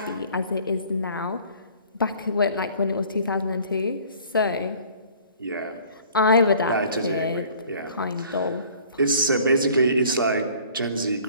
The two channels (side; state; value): both; inverted; correlation -0.51